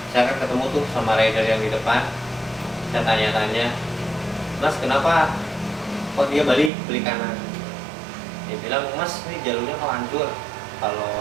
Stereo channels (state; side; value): drops out; left; at 6.7 s